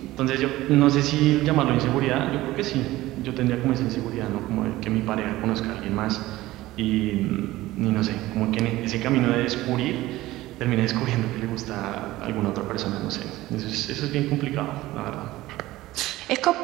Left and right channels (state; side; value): quieter; left; 17.2 dB